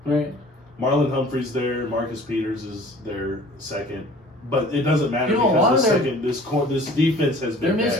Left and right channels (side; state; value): both; normal; correlation 0.48